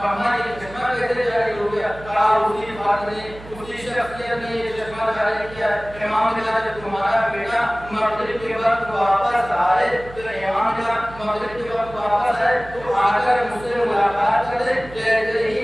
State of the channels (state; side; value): noise; right; hum, 17 dB below the sound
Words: اما یہ چشمہ کیسے جاری ہو گیا؟ کہا اسی بات نے اسی شخصیت نے یہ چشمہ جاری کیا۔ امام نے کہا جب تمہارا بیٹا مغرب کے وقت واپس آئے تو امام نے کہا مغرب کے وقت واپس آئے تو آ کر مجھ سے ملاقات کرے۔ جیسے ہی